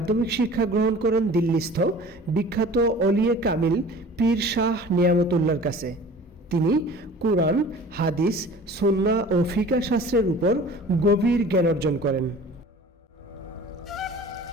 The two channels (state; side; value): normal; both; correlation 0.44